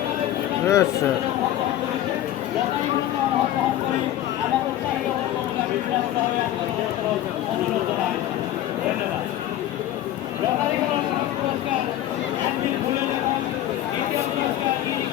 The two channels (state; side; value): quieter; right; 12.9 dB